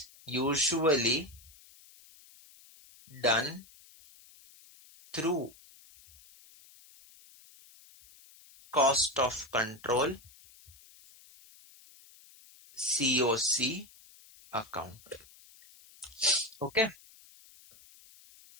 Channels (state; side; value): noise; left; hiss, 24 dB below the sound